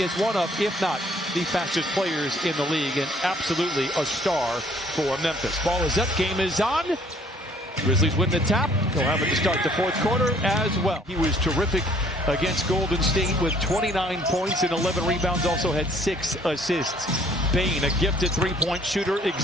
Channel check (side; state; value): both; normal; correlation 0.59